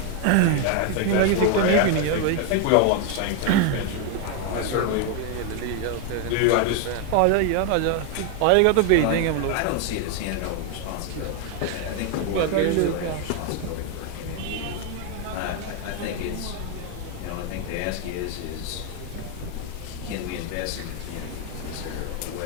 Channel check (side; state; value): both; different; correlation 0.01